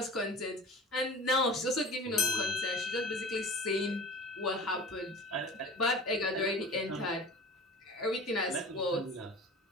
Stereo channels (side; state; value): both; normal; correlation 0.39